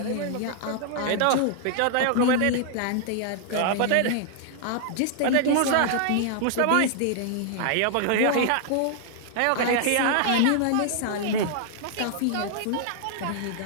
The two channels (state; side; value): different; both; correlation -0.01